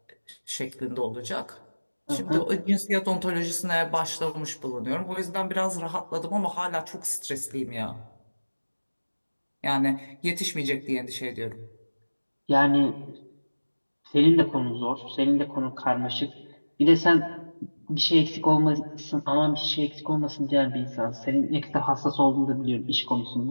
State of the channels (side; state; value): both; inverted; correlation -1.00